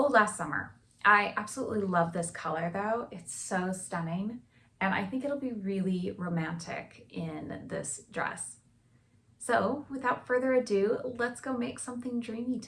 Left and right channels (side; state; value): both; identical; correlation 1.00